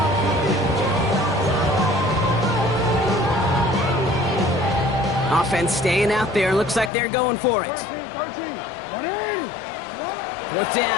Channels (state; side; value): drops out; right; at 6.9 s